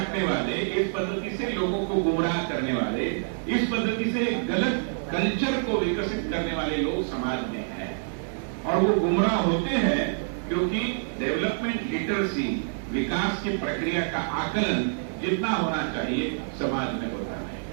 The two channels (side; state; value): left; silent; digital silence